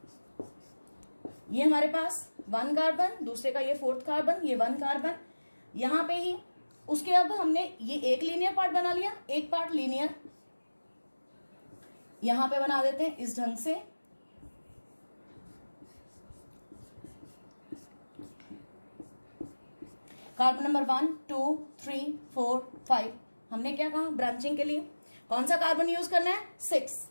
ये हमारे पास 1 कार्बन, दूसरे का ये 4th कार्बन, ये 1 कार्बन यहां पे ही। उसके अब हमने ये एक लीनियर पार्ट बना लिया, एक पार्ट लीनियर यहां पे बना देते हैं इस ढंग से। कार्बन नंबर 1 2 3 4 5 हमने क्या कहा, ब्रांचिंग के लिए कौन सा कार्बन यूज करना है, 6।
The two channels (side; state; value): both; inverted; correlation -1.00